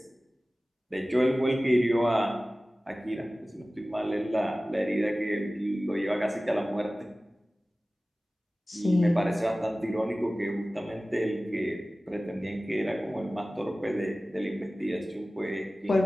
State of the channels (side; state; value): both; normal; correlation 0.97